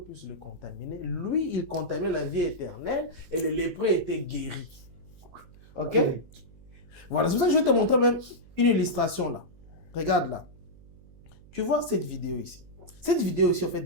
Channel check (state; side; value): noise; right; hum, 23 dB below the sound